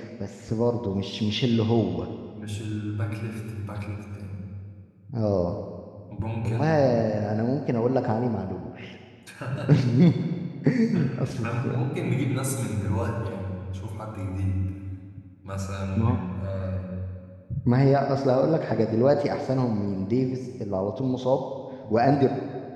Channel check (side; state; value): both; identical; correlation 1.00